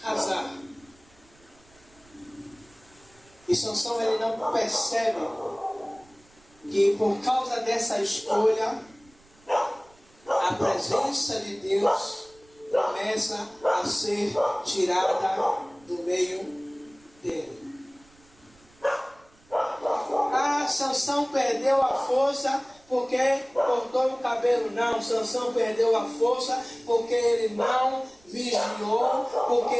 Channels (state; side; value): noise; right; rumble, 30 dB below the sound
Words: casar. E Sansão ele não percebe que por causa dessa escolha, a presença de Deus começa a ser tirada do meio dele. Sansão perdeu a força porque cortou o cabelo. Não, Sansão perdeu a força porque ele não vigiou, porque